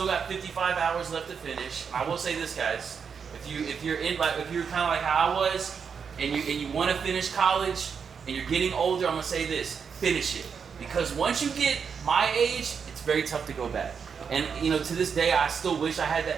got 55 hours left to finish. I will say this, guys. If you're kind of like how I was, and you want to finish college, and you're getting older, I'm gonna say this: finish it, because once you get my age, it's very tough to go back. And you know, to this day, I still wish I had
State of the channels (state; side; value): quieter; left; 6.4 dB